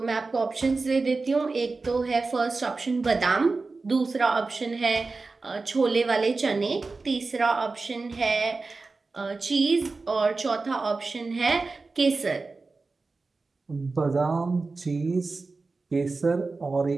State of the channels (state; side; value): quieter; left; 3.9 dB